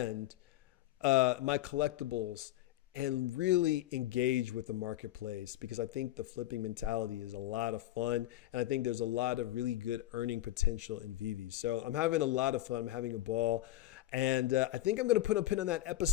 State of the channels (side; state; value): right; quieter; 14.7 dB